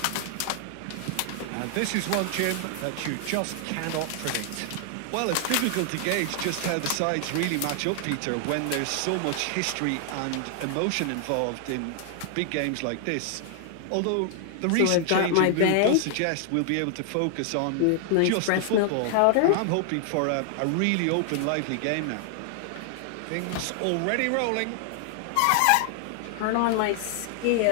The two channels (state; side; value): different; both; correlation 0.00